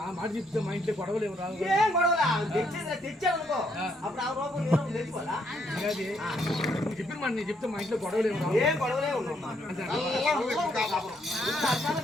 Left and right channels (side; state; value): both; normal; correlation 0.73